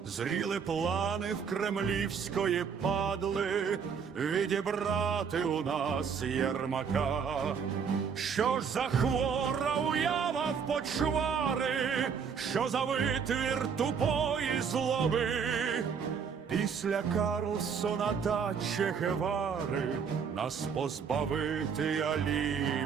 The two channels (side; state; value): left; quieter; 6.5 dB